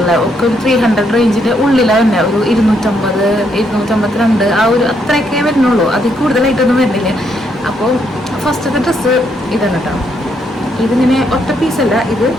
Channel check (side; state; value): both; normal; correlation 0.75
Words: ഒക്കെ ഒരു 300 റേഞ്ചിൻ്റെ ഉള്ളിലാണ് തന്നെ. ഒരു 250, 252 ആ ഒരു അത്രയൊക്കെ വരുന്നുള്ളൂ. അതിൽ കൂടുതലായിട്ടൊന്നും വരുന്നില്ല. അപ്പോൾ ഫസ്റ്റത്തെ ഡ്രസ്സ് ഇതാണ് കേട്ടോ. ഇതിങ്ങനെ ഒറ്റ പീസല്ല, ഇത്